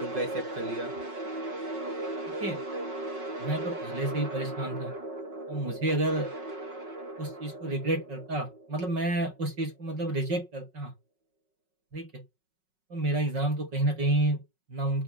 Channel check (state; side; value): late; left; 5.4 ms